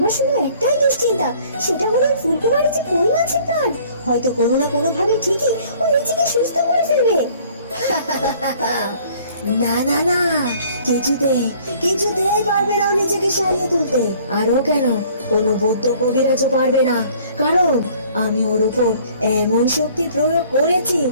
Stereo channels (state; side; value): inverted; both; correlation -0.55